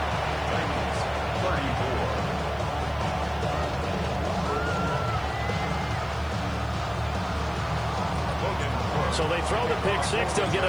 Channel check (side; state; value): left; noise; hiss, 29 dB below the sound